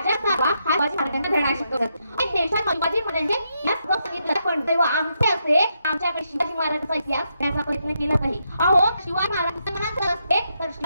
हा शिवाजी महाराजांना धडा शिकवतात. देशात शिवाजी महाराजांचे सांगितलं, पण तेव्हा आमचे असे आमच्याकडे शिवाजी महाराजांचा इतिहास करण्याचा प्रयत्न केला नाही. अहो, शिवाजी महाराजांचं मनात असते तर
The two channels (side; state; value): both; inverted; correlation -0.81